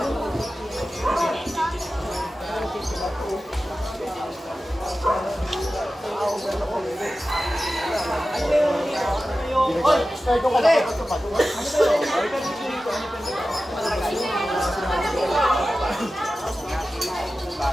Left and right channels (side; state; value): both; normal; correlation 0.94